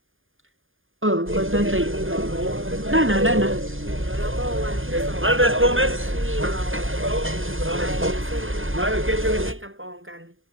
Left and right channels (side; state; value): left; late; 0.59 ms